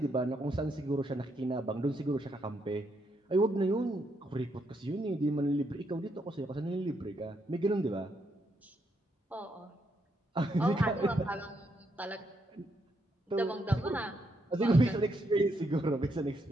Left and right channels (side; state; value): both; normal; correlation 0.78